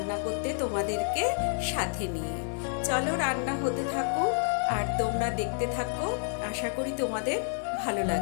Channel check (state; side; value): silent; right; digital silence